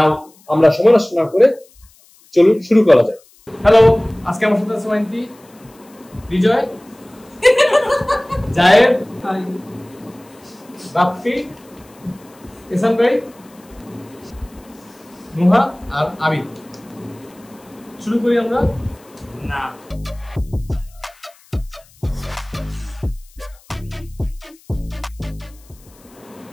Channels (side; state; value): left; noise; hiss, 28 dB below the sound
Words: আমরা সময় নষ্ট না করে চলুন শুরু করা যায়। হ্যালো, আজকে আমার সাথে আছে মাইন্টি, বিজয়, জায়েদ, বাপ্পি, এহসান ভাই, নুহা আর আবিদ। শুরু করি আমরা। না